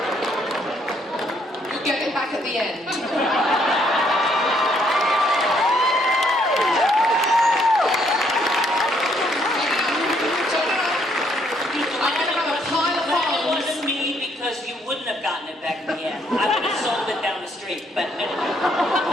You get it back at the end. Wouldn't have gotten it back in the end. I would have sold it down the street, but...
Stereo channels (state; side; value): normal; both; correlation 0.69